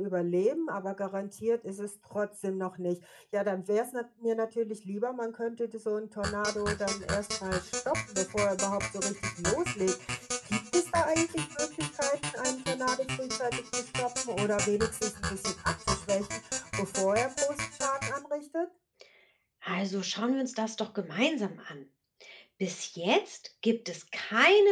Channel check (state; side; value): identical; both; correlation 1.00